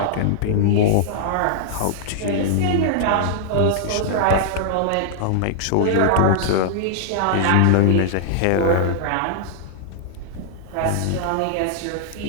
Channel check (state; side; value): different; both; correlation -0.01